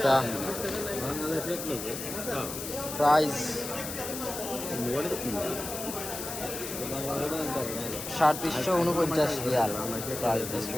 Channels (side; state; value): left; noise; hiss, 7 dB below the sound